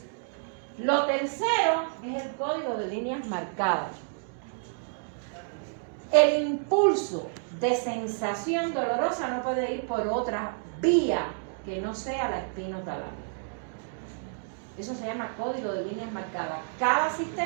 Lo tercero es el código de líneas marcadas. El impulso de sensación dolorosa no puede ir por otra vía que no sea la espinotalámica. Eso se llama código de líneas marcadas. Cada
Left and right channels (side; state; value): left; silent; digital silence